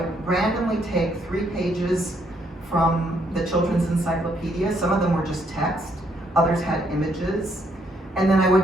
randomly take 3 pages from the children's encyclopedia. Some of them were just text, others had images. And then I would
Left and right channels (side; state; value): both; normal; correlation 0.72